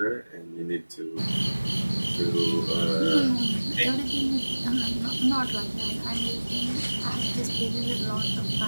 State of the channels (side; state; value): both; inverted; correlation -1.00